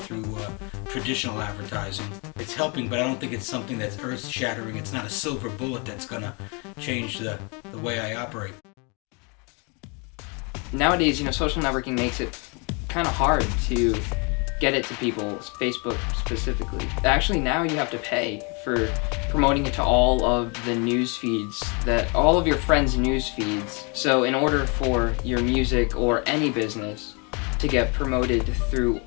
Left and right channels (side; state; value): right; quieter; 32.6 dB